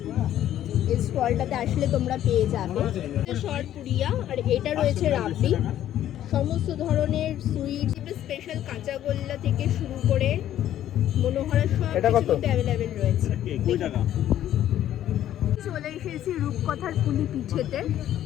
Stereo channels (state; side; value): quieter; right; 11.9 dB